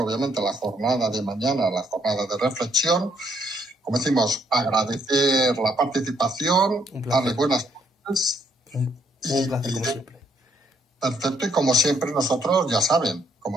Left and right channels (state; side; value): normal; both; correlation 0.70